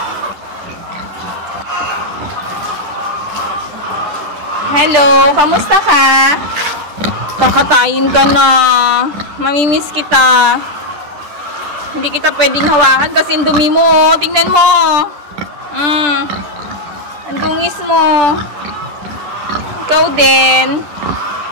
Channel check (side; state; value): left; late; 10 ms